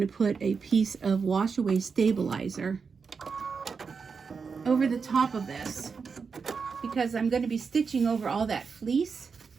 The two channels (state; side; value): quieter; left; 5.4 dB